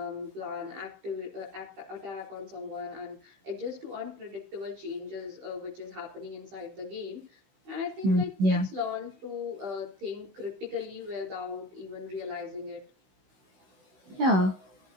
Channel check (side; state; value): left; late; 16 ms